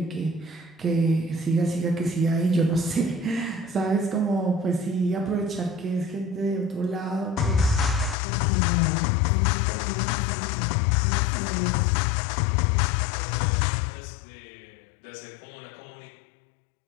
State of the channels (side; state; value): right; drops out; at 8.2 s